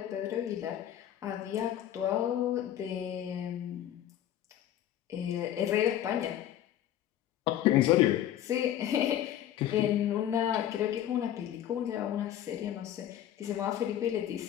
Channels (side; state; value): right; quieter; 11.5 dB